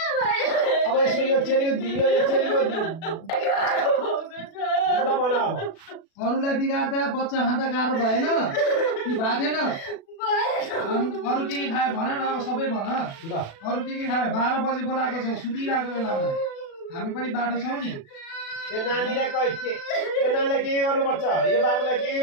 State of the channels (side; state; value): right; late; 36 ms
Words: अब यसो यो चेलीको ल भन अब अरूलाई बिगार्दा बच्चा खाँदा गाह्रो भएन कि भएको थिएन? अरू के खायो भन न? अब सबै भन। ल अरू के खायो? 12 बजे बोलाएको छौ सुतिरहेको बेलामा। हामी पनि बाटो छौँ नि। यो नानीलाई यो नानीलाई के गर्नुपर्छ? यो बाबुलाई के